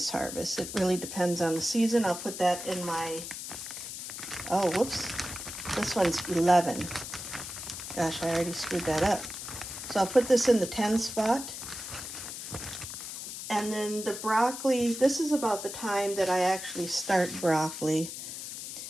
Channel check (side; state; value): left; noise; hiss, 8 dB below the sound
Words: harvest. It really depends on the season. I'll put that in my, oh, whoops. This one's 11. Gosh, I already screwed that up. So I'll put this in the 10 spot. And then the broccoli, this is about the time that I actually start broccoli.